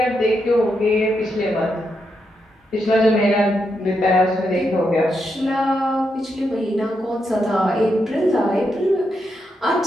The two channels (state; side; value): normal; both; correlation 0.83